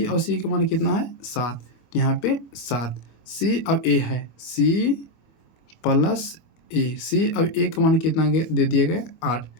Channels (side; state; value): right; late; 25 ms